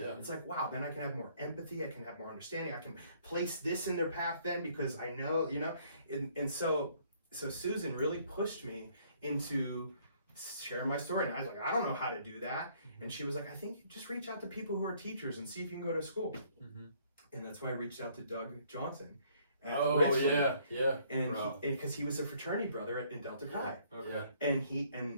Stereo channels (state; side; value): inverted; both; correlation -0.63